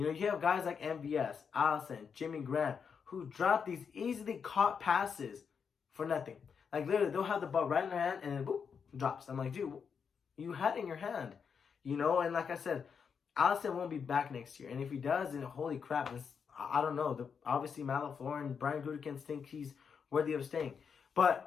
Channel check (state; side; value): quieter; right; 6.4 dB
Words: know, you have guys like MVS, Allison, Jimmy Graham, who drop these easily caught passes for nothing. Like, literally, they'll have the ball right in their hand and then, boop, drops. I'm like, dude, you had it in your hand. You know, and like I said, Allison won't be back next year. And if he does, then holy crap, I don't know. Obviously, Matt LaFleur and Brian Gutekunst think he's worthy of staying.